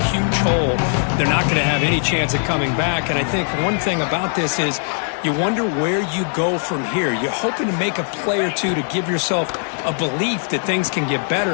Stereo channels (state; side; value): silent; right; 57 dB below the other